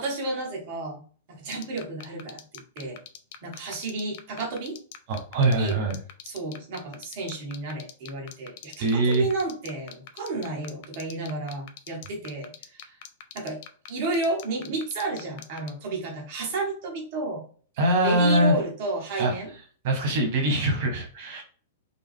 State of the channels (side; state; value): both; inverted; correlation -0.33